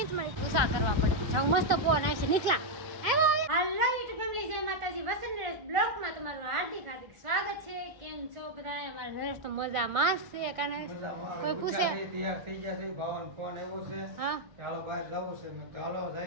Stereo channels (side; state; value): left; late; 1.9 ms